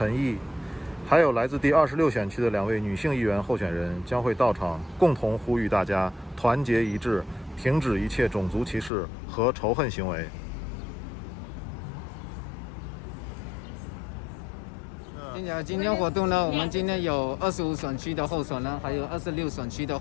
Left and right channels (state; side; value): drops out; right; at 8.9 s